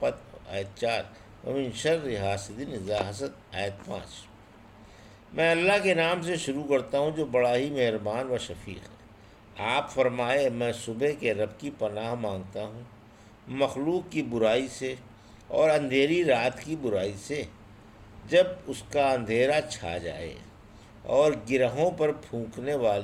آیت 4، ومن شر حاسد اذا حسد آیت 5۔ میں اللہ کے نام سے شروع کرتا ہوں جو بڑا ہی مہربان و شفیق ہے۔ آپ فرمائے، میں صبح کے رب کی پناہ مانگتا ہوں مخلوق کی برائی سے اور اندھیری رات کی برائی سے جب اس کا اندھیرا چھا جائے، اور گرہوں پر پھونکنے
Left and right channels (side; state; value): both; identical; correlation 1.00